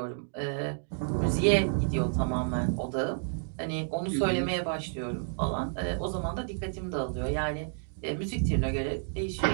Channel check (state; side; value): silent; left; digital silence